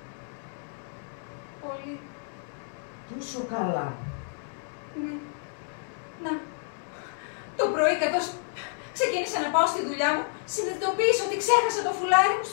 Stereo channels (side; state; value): right; silent; 56 dB below the other